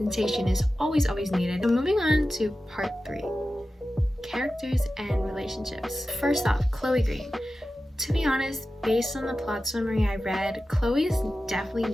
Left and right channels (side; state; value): both; normal; correlation 0.94